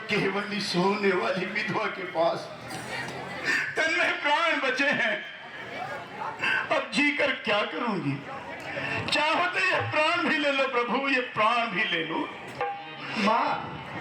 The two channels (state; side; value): identical; both; correlation 1.00